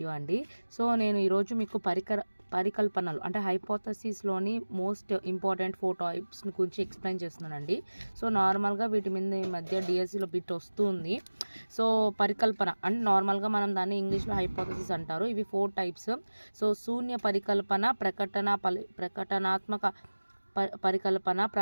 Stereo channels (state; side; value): inverted; both; correlation -1.00